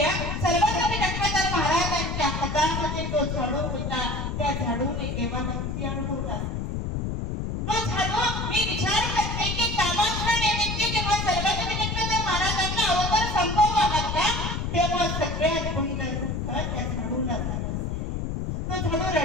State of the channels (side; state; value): left; noise; rumble, 2 dB below the sound